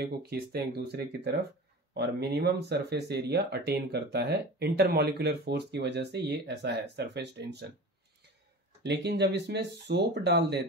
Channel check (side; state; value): both; normal; correlation 0.35